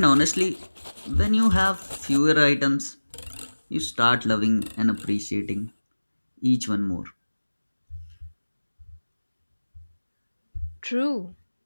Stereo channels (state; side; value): inverted; both; correlation -1.00